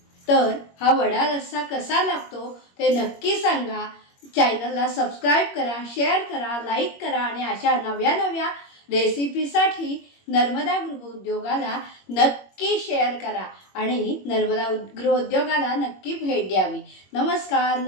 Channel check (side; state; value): right; late; 21 ms